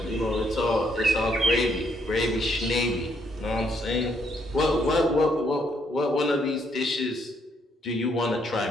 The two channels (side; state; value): both; normal; correlation 0.72